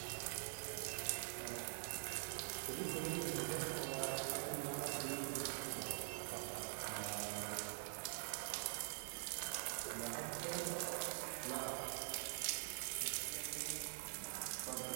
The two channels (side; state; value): left; silent; digital silence